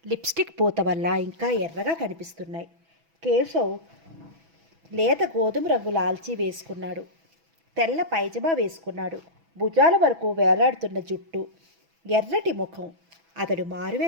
లిప్స్టిక్ పూత వల్ల ఇంకా ఎర్రగా కనిపిస్తున్నాయి. కేశవ్ లేత గోధుమ రంగు లాల్చీ వేసుకున్నాడు. తెల్ల పైజమా వేసుకున్నాడు. భుజాల వరకు వేలాడుతున్న జుట్టు, ఎర్రటి ముఖం. అతడు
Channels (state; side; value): late; left; 6.1 ms